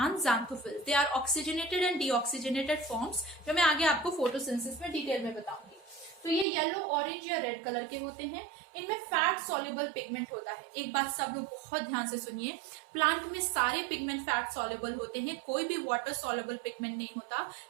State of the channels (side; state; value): left; drops out; at 6.5 s